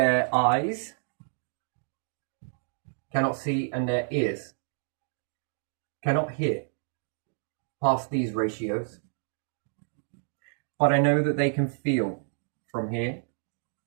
eyes cannot see and their ears cannot hear past these ratios. But I know that they can feel from here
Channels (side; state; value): left; silent; digital silence